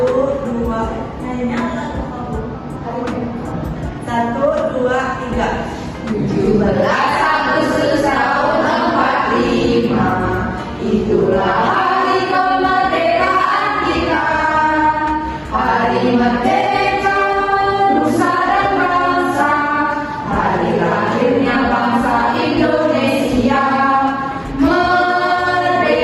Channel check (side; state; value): both; identical; correlation 1.00